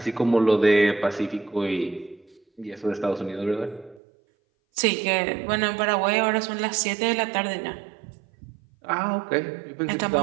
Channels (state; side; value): drops out; left; at 4.0 s